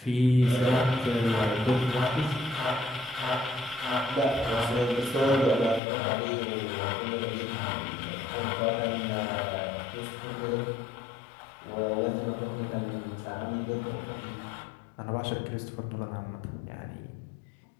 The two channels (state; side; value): drops out; right; at 5.8 s